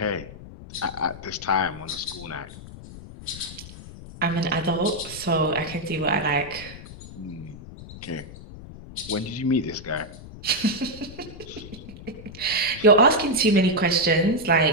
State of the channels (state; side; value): noise; left; rumble, 15 dB below the sound